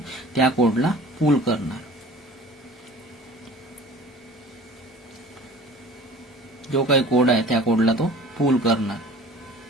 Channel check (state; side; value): normal; both; correlation 0.44